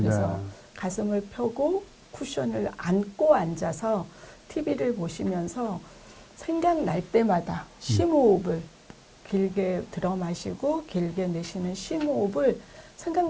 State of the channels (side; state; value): both; identical; correlation 1.00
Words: 네. 가슴을 펴고 쿠션을 안고 앉아서 TV를 보시면서 생각날 때마다 심호흡을 길게 들어 마시고 길게 내쉬는 심호흡을